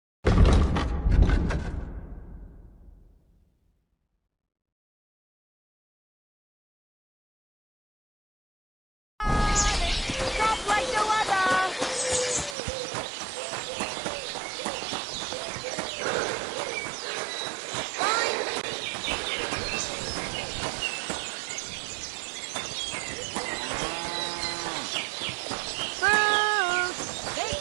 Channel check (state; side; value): drops out; left; at 12.6 s